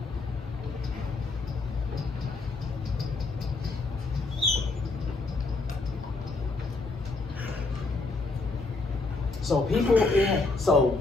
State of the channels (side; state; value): right; quieter; 3.7 dB